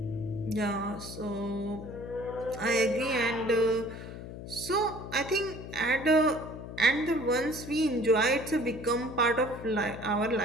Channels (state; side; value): noise; left; hum, 11 dB below the sound